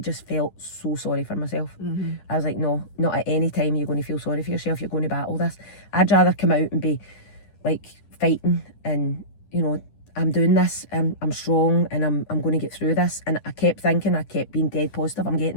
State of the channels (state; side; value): late; right; 10 ms